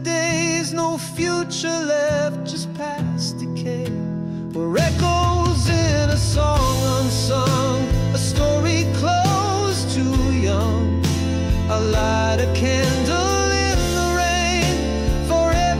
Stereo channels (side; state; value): both; identical; correlation 1.00